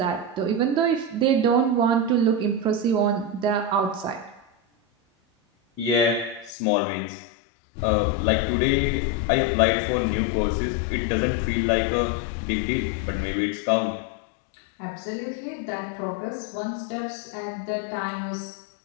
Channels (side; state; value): right; drops out; at 6.5 s